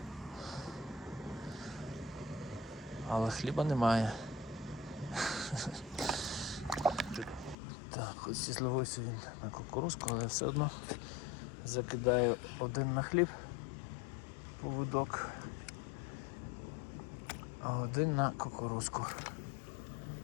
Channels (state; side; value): drops out; right; at 7.6 s